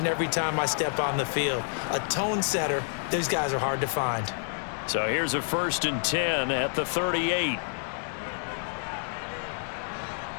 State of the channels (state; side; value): silent; right; 59 dB below the other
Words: every time I step on the field. A tone setter, those guys are hard to find. So here's a 1st and 10 at the 38.